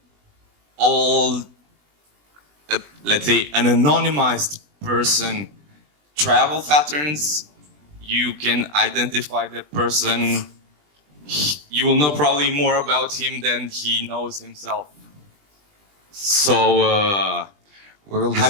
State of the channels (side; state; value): left; late; 20 ms